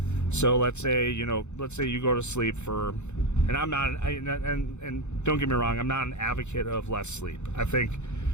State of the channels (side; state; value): right; late; 0.83 ms